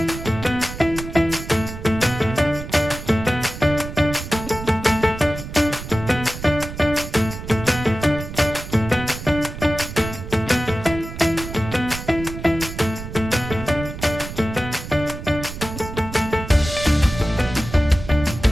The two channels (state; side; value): noise; right; rumble, 10 dB below the sound